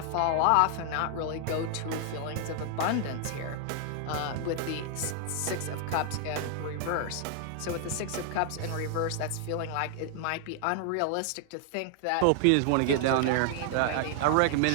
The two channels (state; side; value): different; both; correlation 0.00